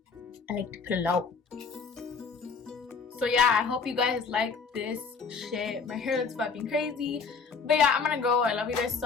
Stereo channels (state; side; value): quieter; right; 5.2 dB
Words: like to put it out. So yeah, I hope you guys like this shit. My hair looks fucking crazy. But yeah, I'm gonna go. I love you guys